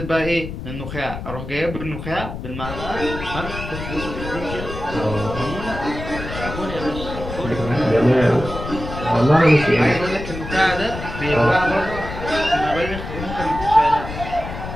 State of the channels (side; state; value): left; noise; rumble, 8 dB below the sound